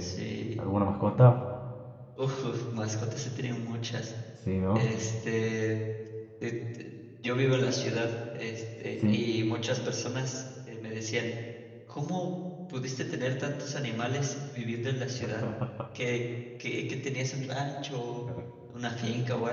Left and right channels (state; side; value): identical; both; correlation 1.00